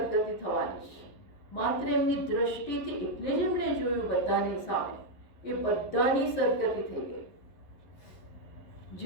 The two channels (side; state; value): right; late; 11 ms